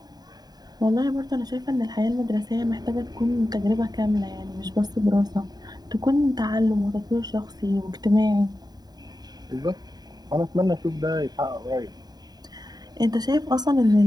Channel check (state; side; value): late; left; 0.20 ms